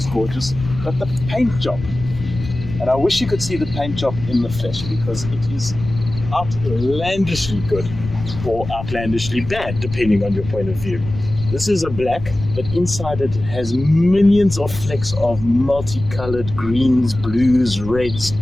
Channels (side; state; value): left; noise; rumble, 10 dB below the sound